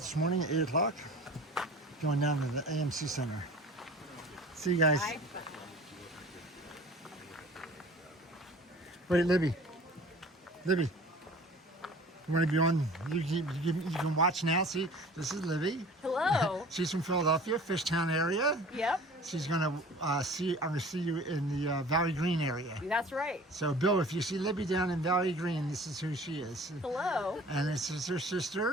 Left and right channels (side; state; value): both; normal; correlation 0.44